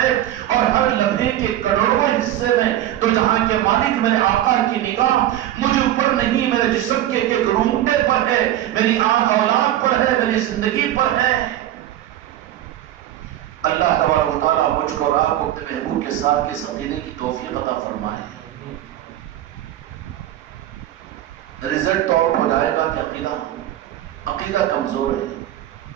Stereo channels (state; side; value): quieter; left; 13.0 dB